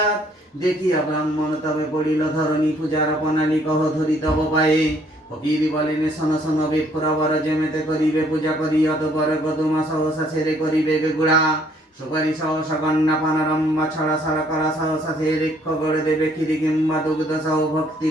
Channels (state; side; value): normal; both; correlation 0.63